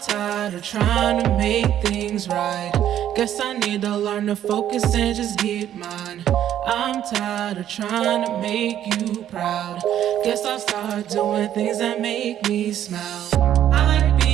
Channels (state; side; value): quieter; left; 11.0 dB